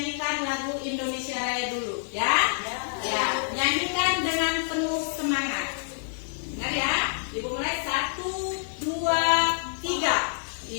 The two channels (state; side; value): silent; right; digital silence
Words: lagu Indonesia Raya dulu ya. Ya, nyanyikan dengan penuh semangat. Dengar ya, Ibu mulai 1, 2, 3.